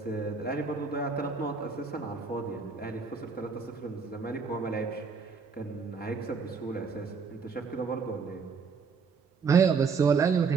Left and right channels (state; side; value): quieter; left; 5.2 dB